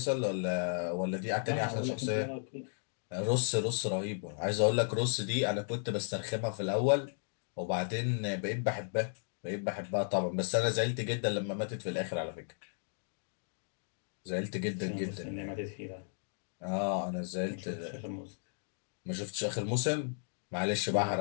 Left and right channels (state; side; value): silent; right; digital silence